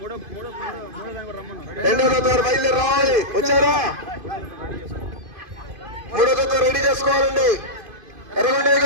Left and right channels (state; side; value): late; left; 2.5 ms